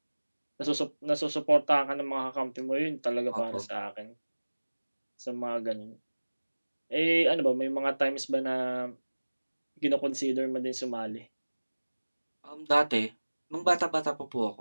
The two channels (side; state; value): both; inverted; correlation -1.00